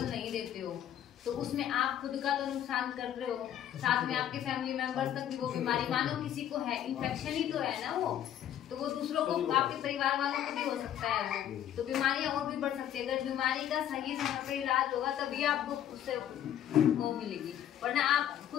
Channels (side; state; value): right; quieter; 10.7 dB